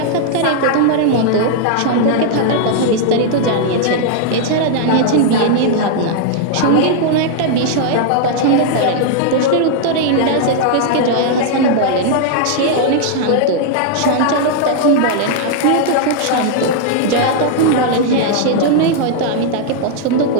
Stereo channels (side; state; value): both; different; correlation -0.01